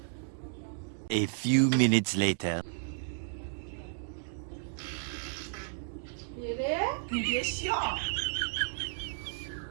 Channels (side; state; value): left; silent; digital silence